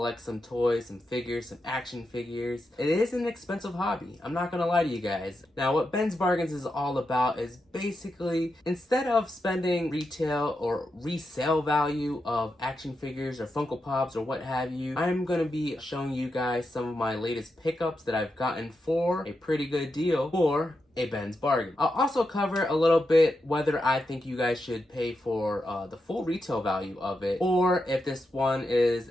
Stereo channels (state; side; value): normal; both; correlation 0.87